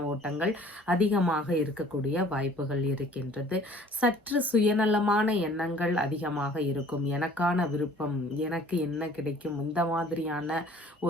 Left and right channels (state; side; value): normal; both; correlation 0.52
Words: ஓட்டங்கள் அதிகமாக இருக்கக்கூடிய வாய்ப்புகள் இருக்கின்றது. சற்று சுயநலமான எண்ணங்கள் அதிகமாக இருக்கும். எனக்கான விருப்பம், எனக்கு என்ன கிடைக்கும், இந்த மாதிரியான